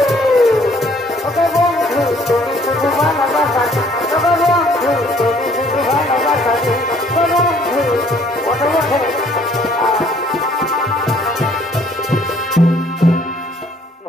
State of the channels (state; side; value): normal; both; correlation 0.61